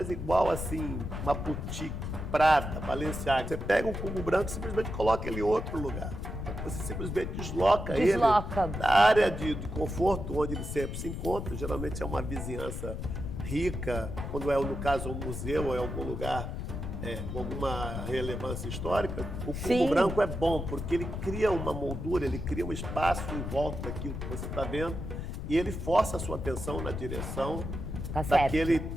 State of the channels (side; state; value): left; noise; rumble, 5 dB below the sound